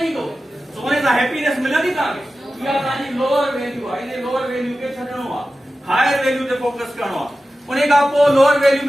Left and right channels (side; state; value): both; normal; correlation 0.94